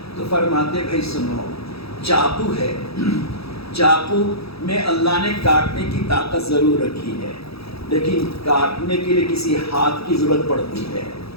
تو فرماتے بھائی سنو، چاقو ہے، چاقو میں اللہ نے کاٹنے کی طاقت ضرور رکھی ہے، لیکن کاٹنے کے لیے کسی ہاتھ کی ضرورت پڑتی ہے۔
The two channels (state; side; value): late; right; 0.77 ms